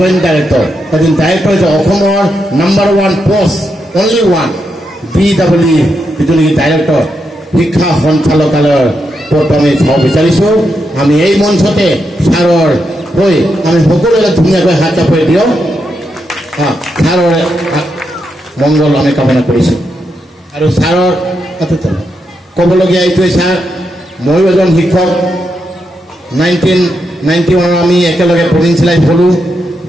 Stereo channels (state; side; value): normal; both; correlation 0.83